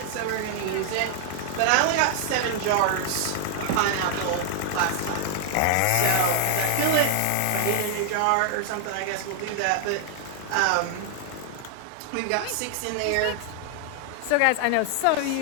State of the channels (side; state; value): both; different; correlation 0.00